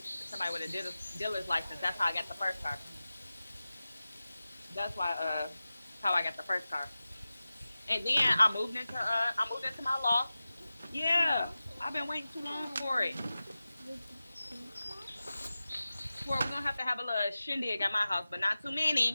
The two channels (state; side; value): inverted; both; correlation -0.95